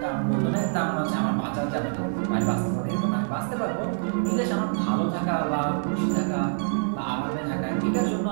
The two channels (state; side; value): silent; left; digital silence